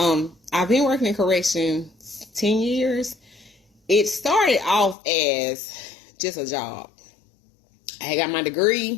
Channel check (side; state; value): right; drops out; at 5.0 s